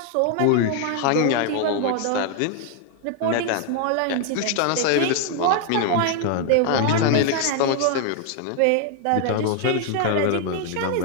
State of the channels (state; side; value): different; both; correlation 0.01